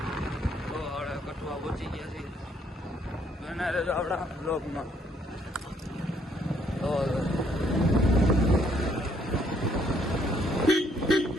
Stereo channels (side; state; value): both; normal; correlation 0.68